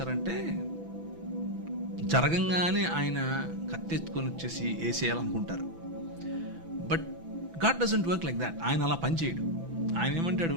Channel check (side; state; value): left; late; 6.0 ms